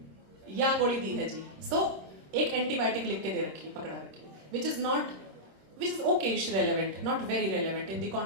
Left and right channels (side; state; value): left; late; 26 ms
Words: या गोली दी है जी। सो एक एंटीबायोटिक लिख के दे रखी है, पकड़ा रखी है, which is Okesh relevant, not very relevant in the